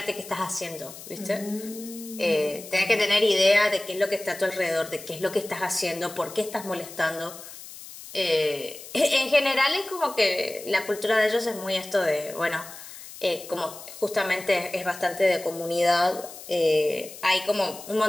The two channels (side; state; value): left; noise; hiss, 15 dB below the sound